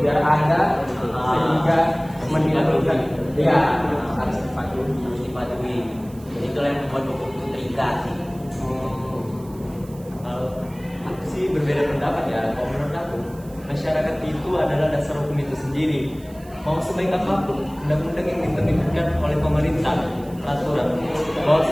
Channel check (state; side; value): noise; right; hiss, 24 dB below the sound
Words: ada sehingga menimbulkan ya harus dipatuhi. Jadi itulah yang membuat hukum itu terikat. Aku sih berbeda pendapat ya. Kalau menurut aku, masyarakat itu adalah dasar hukum itu sendiri. Mau sebaik apapun undang-undang yang diterbitkan oleh pemerintah, peraturan,